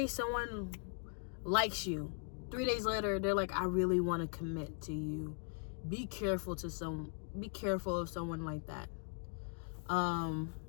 someone likes you. 3 days later, they're like, I really want to commit to you. Be careful of someone like that.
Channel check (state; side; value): silent; right; 51 dB below the other